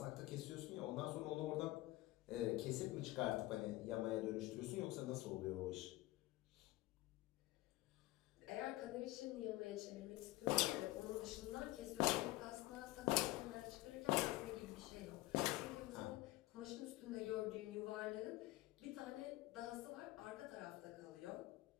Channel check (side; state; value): right; quieter; 18.4 dB